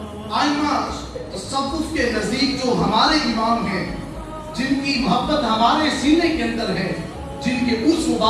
آئمہ تصوف کے نزدیک جو ہمارے امام ہیں، جن کی محبت ہمارے سینے کے اندر ہے، جن کے اس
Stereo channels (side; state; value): both; identical; correlation 1.00